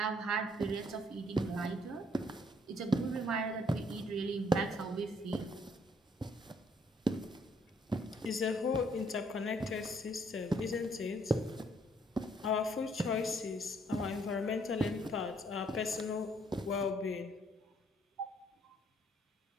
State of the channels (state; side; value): normal; both; correlation 0.67